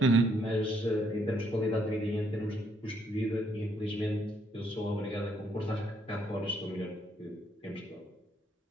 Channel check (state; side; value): normal; both; correlation 0.71